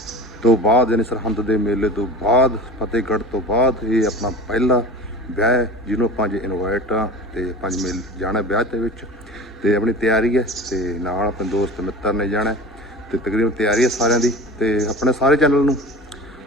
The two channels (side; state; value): both; normal; correlation 0.34